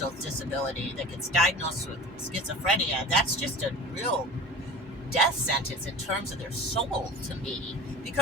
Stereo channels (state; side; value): normal; both; correlation 0.37